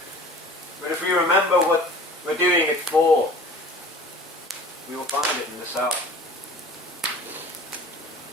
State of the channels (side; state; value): both; normal; correlation 0.44